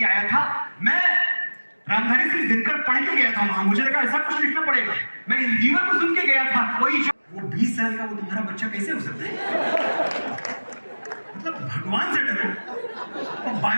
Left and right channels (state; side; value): inverted; both; correlation -1.00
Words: आया था, मैं रामधारी सिंह दिनकर पढ़ के गया था वहां। मुझे लगा ऐसा कुछ लिखना पड़ेगा। मैं इंजीनियर को सुन के गया था, कोई वो 20 साल का वो तुम्हारा बच्चा कैसे हो सकता है? मतलब भगवान से डरो,